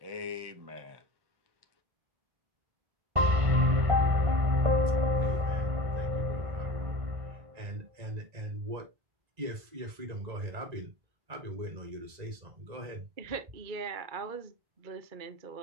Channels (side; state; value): left; late; 1.9 ms